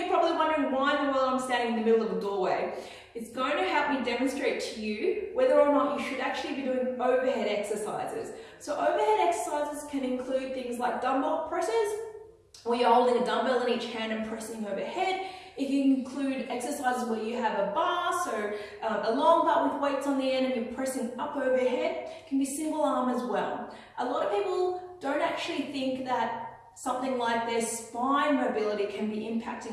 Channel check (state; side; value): identical; both; correlation 1.00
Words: probably wondering why in the world I'm standing in the middle of a doorway. It's going to help me demonstrate to you whether or not you should actually be doing overhead exercises. So overhead exercises can include things like dumbbell presses, where you're holding a dumbbell in each hand and pressing overhead. It can include exercises where you have a bar, so a long bar with weights on the end and you're pressing up overhead. It can be single arm as well. A lot of people don't actually think that something like their spine mobility can be